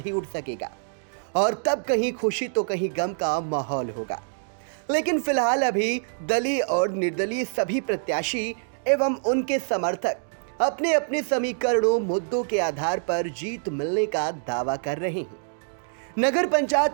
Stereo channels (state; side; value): silent; left; digital silence